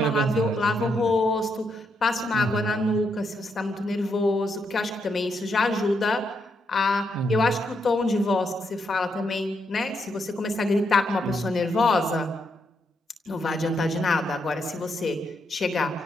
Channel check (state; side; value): normal; both; correlation 0.79